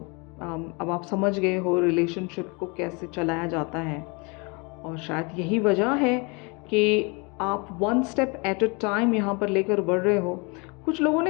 अब आप समझ गए हो रिलेशनशिप को कैसे चलाया जाता है। और शायद यही वजह है कि आप one step at a time यहाँ पर लेकर बढ़ रहे हो। कुछ लोगों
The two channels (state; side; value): quieter; right; 30.3 dB